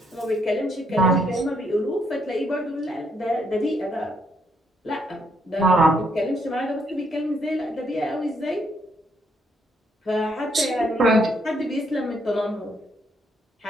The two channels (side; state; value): both; normal; correlation 0.73